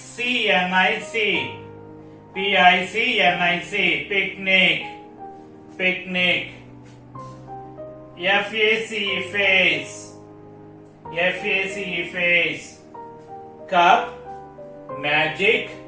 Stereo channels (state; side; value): identical; both; correlation 1.00